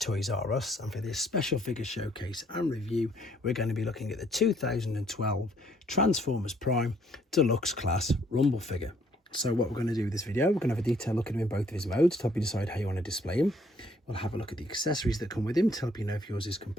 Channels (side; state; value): both; normal; correlation 0.65